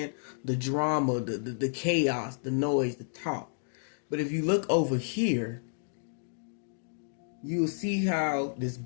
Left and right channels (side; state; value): right; silent; digital silence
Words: The drama, the chaos, the noise, the talk. But if you look over here, you'll see how this